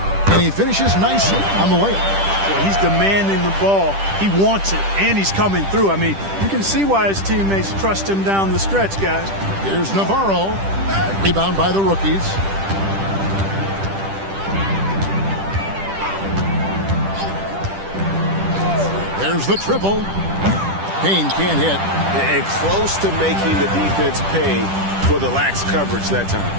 And he finishes nicely on the layup. Well, he's demanding the ball. He wants it, and he's coming through. I mean, you can see why his teammates trust him down the stretch, guys. Here's Navarro. Rebound by the rookies. There's the triple. Payne can't hit. And close to making the defense pay for the lax coverage that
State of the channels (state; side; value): late; left; 10 ms